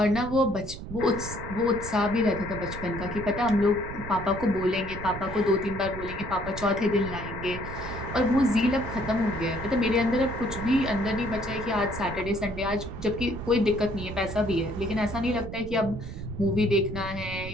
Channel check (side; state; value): right; noise; rumble, 10 dB below the sound